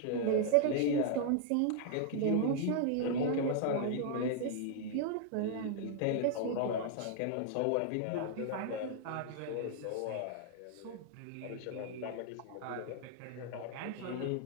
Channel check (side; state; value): both; different; correlation 0.00